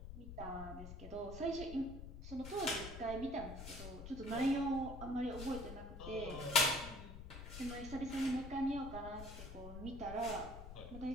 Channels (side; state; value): left; noise; rumble, 10 dB below the sound